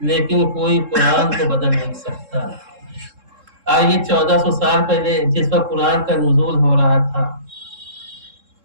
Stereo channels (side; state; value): left; late; 3.7 ms